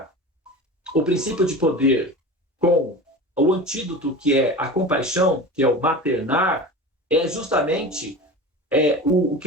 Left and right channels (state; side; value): normal; both; correlation 0.32